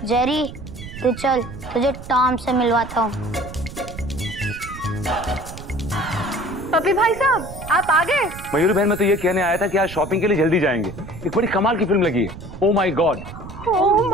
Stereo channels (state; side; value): noise; right; rumble, 13 dB below the sound